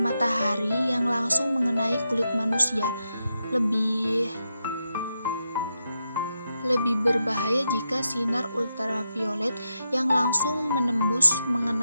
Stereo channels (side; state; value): both; inverted; correlation -0.85